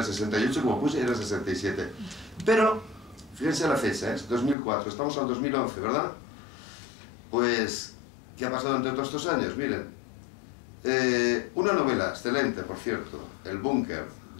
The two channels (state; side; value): drops out; right; at 4.5 s